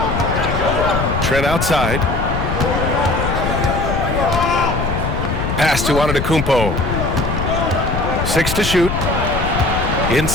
Trent outside. Pass to Antetokounmpo. 6 to shoot.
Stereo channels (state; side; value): noise; left; rumble, 3 dB below the sound